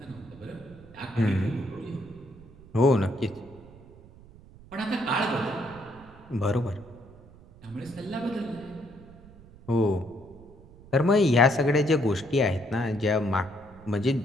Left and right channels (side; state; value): right; noise; rumble, 22 dB below the sound